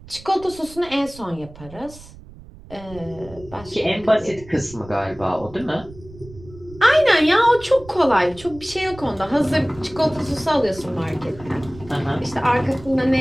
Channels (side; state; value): right; noise; rumble, 19 dB below the sound